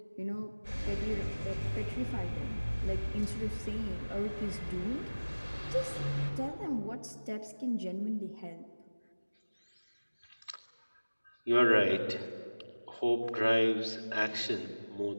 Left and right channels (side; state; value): both; inverted; correlation -1.00